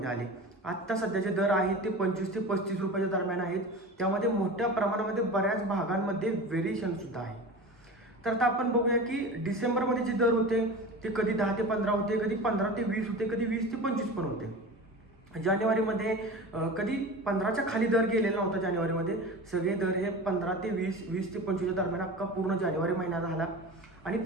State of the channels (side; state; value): both; normal; correlation 0.32